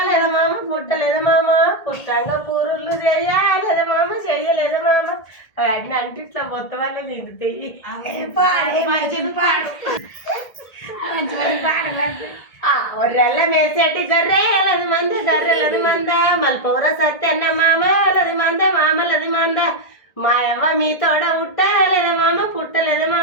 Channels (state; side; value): late; right; 1.8 ms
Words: మామ పుట్టలేదు మామ పుట్టంగా పూరుళ్ళు చెయ్యాలేదా మామ చెయ్యలేదు మామ అన్ని అంటే ఇట్లా మొత్తం వల్ల నిండుతాయి. ఒర్రెల్ల మేసేటి గర్రెలది మంద గర్రెలది మంద మల్పూర సత్యన్న మామలది మంద మామలది మంద మాయవ్వ మీ తోడ పుట్టాలేదా మామ పుట్టలేదు